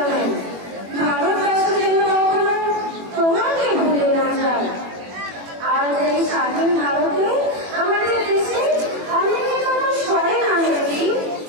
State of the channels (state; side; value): late; left; 21 ms